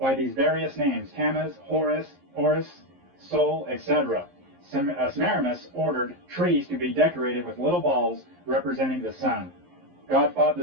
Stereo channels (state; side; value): late; left; 11 ms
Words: these various names: Tammuz, Horus, Sol, etc. Semiramis ordered trees to be decorated with little balls representing the sun. God fought